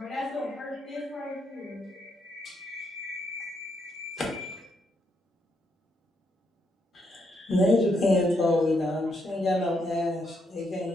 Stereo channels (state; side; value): normal; both; correlation 0.77